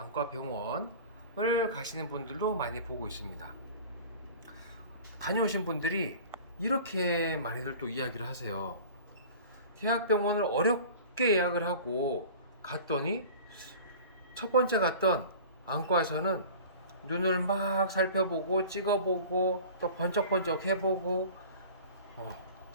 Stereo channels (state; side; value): inverted; both; correlation -0.41